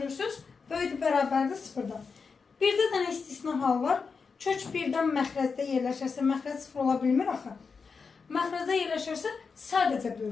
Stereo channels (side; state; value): right; quieter; 5.2 dB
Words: Böyüdür, bərabərdir, sıfırdan. Bir də dənə istisna hal var. Kök birdən məxrəcdə yerləşərsə, məxrəc sıfır ola bilmir axı. Məxrəcdə yerləşərsə, sadəcə